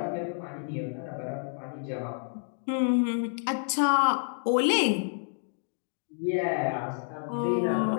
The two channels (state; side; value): silent; right; digital silence